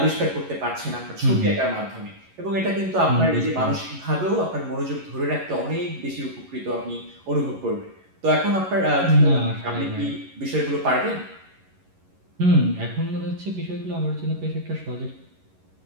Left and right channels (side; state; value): left; late; 11 ms